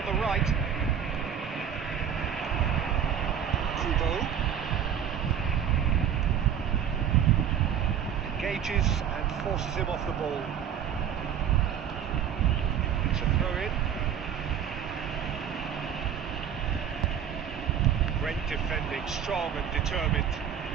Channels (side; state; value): left; quieter; 8.5 dB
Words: the right. Kubo engages and forces him off the ball. It's a throw-in. Great defending, strong and determined.